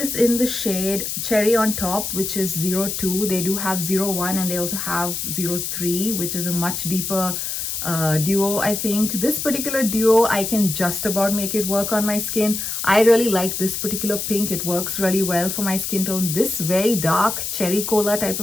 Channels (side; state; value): left; noise; hiss, 3 dB below the sound